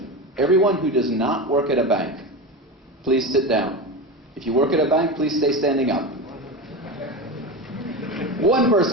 Everyone who does not work at a bank, please sit down. If you work at a bank, please stay standing up. One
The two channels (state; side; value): normal; both; correlation 0.22